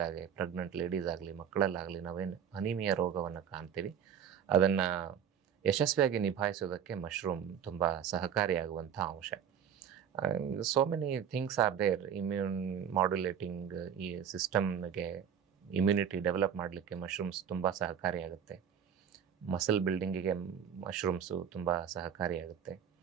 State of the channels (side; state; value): left; quieter; 8.3 dB